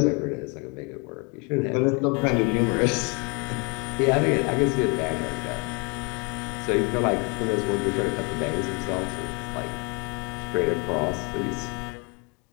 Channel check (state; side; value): quieter; right; 32.4 dB